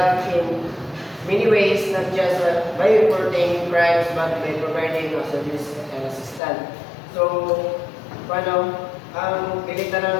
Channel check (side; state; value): right; drops out; at 6.4 s